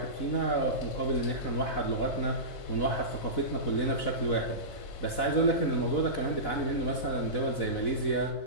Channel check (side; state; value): right; late; 4.0 ms